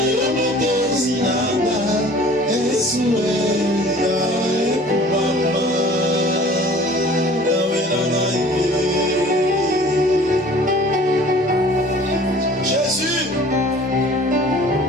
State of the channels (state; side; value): normal; both; correlation 0.48